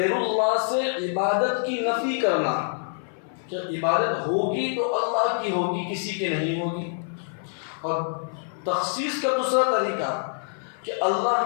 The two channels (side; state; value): right; silent; 59 dB below the other